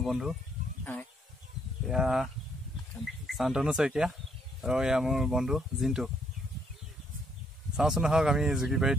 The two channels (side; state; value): both; normal; correlation 0.70